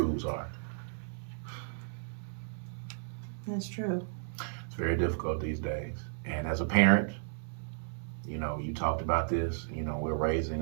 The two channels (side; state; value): left; silent; 55 dB below the other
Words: are. That's true. It's very difficult these days. And as a parent, you know, you talked about this. You know, we're